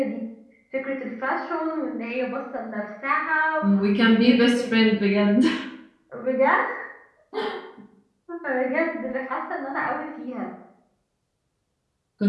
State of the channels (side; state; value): both; identical; correlation 1.00